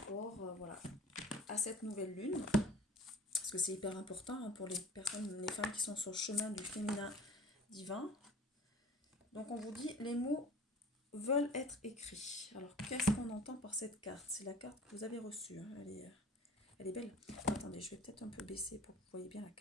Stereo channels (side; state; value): both; normal; correlation 0.44